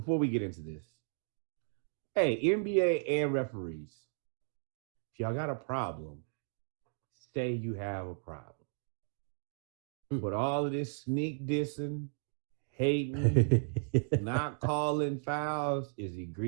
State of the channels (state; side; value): silent; left; digital silence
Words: we get into this. Hey, NBA and referees, if y'all got a problem, say you have a problem. But all of this sneak dissing, hating, not calling fouls is